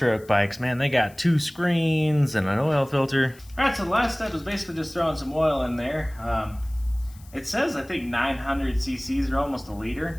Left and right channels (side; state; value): left; noise; hiss, 25 dB below the sound